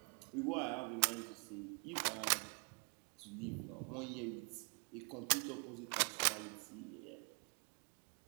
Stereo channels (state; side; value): quieter; left; 38.1 dB